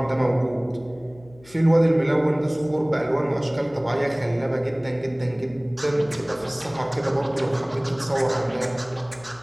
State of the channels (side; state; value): left; noise; hum, 24 dB below the sound